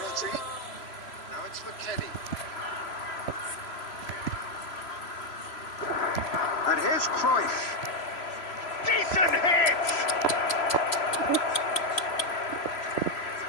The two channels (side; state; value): right; late; 3.0 ms